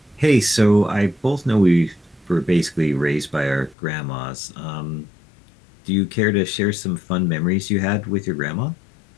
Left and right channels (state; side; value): drops out; right; at 3.8 s